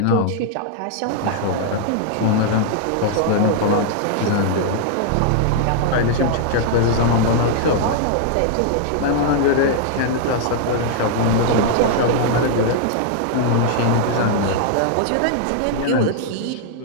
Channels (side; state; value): both; different; correlation -0.01